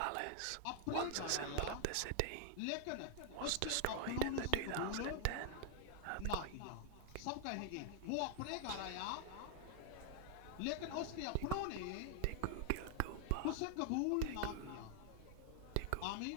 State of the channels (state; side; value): different; both; correlation 0.00